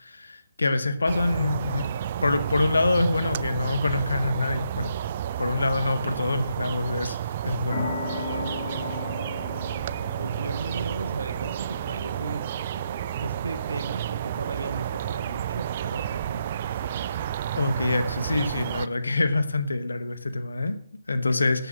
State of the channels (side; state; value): both; inverted; correlation -0.78